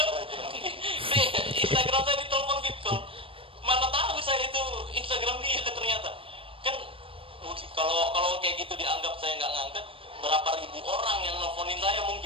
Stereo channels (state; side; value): late; left; 0.26 ms